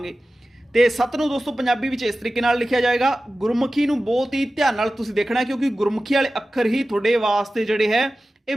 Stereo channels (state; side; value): normal; both; correlation 0.95